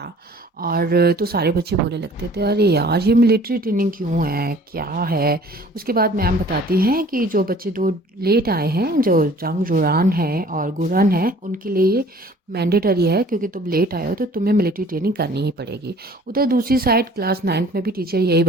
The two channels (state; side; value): normal; both; correlation 0.51